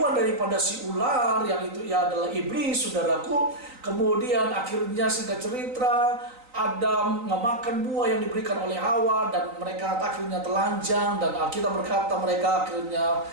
daripada si ular, yang itu ya adalah iblis, saudaraku. Kemudian akhirnya singkat cerita Adam memakan buah yang diberikan oleh Hawa dan mereka akhirnya telanjang, dan Alkitab berkata mereka akhirnya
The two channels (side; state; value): left; late; 3.9 ms